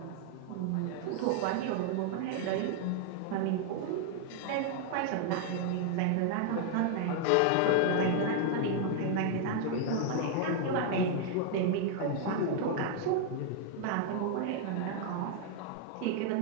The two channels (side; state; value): both; different; correlation 0.00